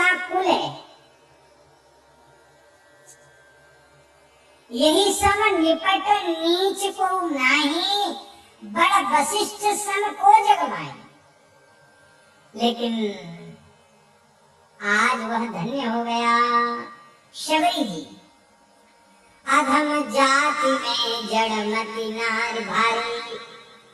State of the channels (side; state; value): both; identical; correlation 1.00